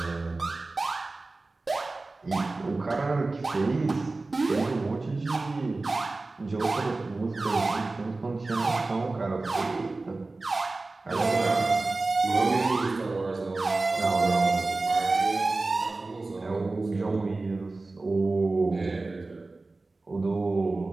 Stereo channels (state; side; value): quieter; left; 3.3 dB